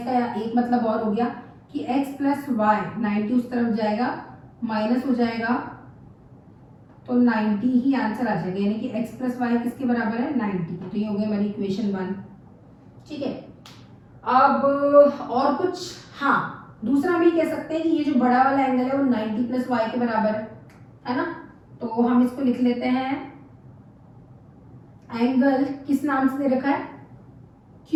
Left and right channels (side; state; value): both; identical; correlation 1.00